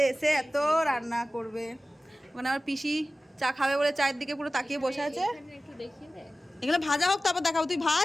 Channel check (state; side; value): normal; both; correlation 0.96